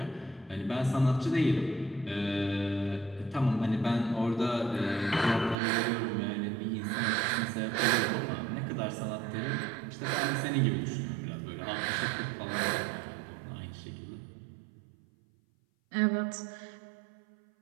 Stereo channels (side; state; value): left; drops out; at 5.6 s